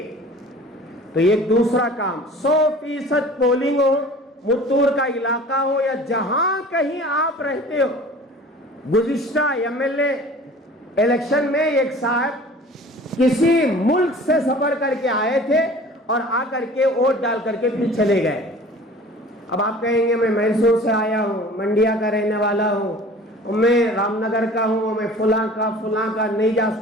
تو یہ دوسرا کام، 100% پولنگ ہو، متور کا علاقہ ہو یا جہاں کہیں آپ رہتے ہو۔ گزشتہ MLA الیکشن میں ایک صاحب کسی ملک سے سفر کر کے آئے تھے اور آ کر کے ووٹ ڈال کر کے پھر چلے گئے۔ اب آپ کہیں گے میں میسور سے آیا ہوں، منڈیا کا رہنے والا ہوں، میں رام نگر کا ہوں، میں فلاں کا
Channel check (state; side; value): normal; both; correlation 0.44